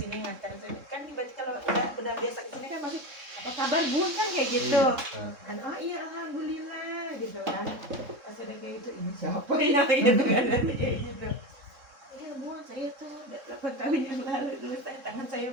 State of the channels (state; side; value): late; left; 3.7 ms